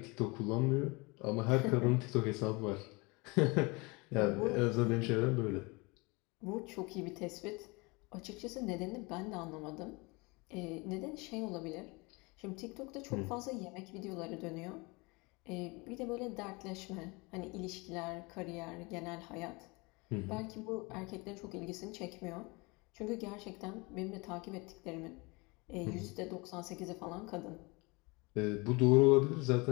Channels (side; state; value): right; quieter; 26.6 dB